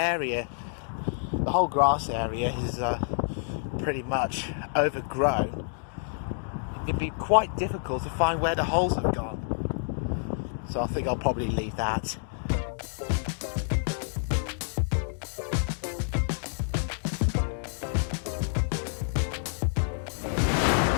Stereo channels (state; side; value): silent; right; digital silence